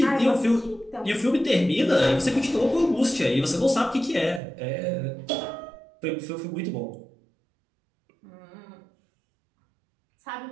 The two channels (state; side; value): drops out; left; at 4.4 s